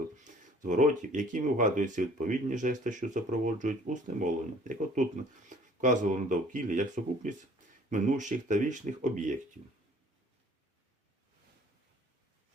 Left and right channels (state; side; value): normal; both; correlation 0.54